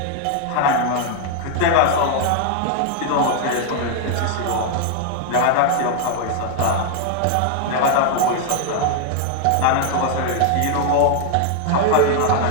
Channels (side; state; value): both; different; correlation 0.00